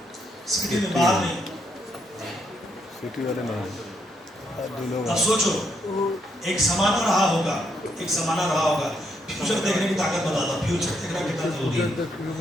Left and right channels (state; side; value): normal; both; correlation 0.77